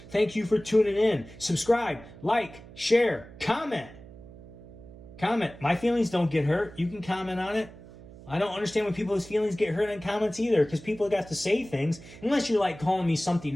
Thank you for tuning in. Subscribe, like, share, comment. Comment. My feelings don't get hurt. You can comment on it. I don't understand when people's feelings get hurt in comments either, because people got to say things. Unless you're like calling me something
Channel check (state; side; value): noise; right; hum, 18 dB below the sound